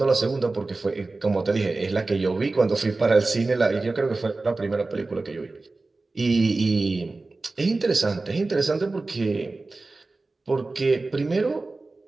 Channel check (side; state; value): left; quieter; 3.4 dB